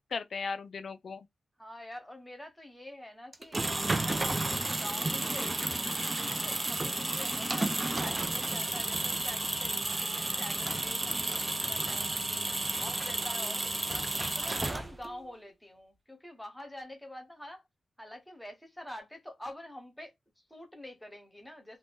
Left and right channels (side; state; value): both; normal; correlation 0.97